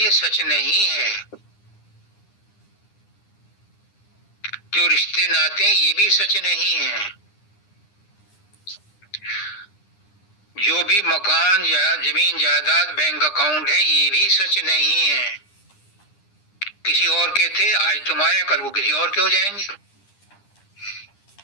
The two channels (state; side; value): late; right; 9.8 ms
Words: सच नहीं है। जो रिश्ते नाते ये भी सच नहीं है। जो भी मकान या जमीन जायदाद बैंक अकाउंट है ये भी सच नहीं है। किसी और के थे, आज तुम्हारे, कल को किसी और के हो जाएंगे।